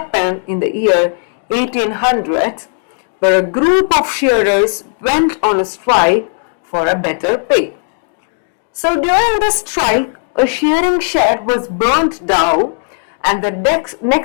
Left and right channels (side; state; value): right; silent; 63 dB below the other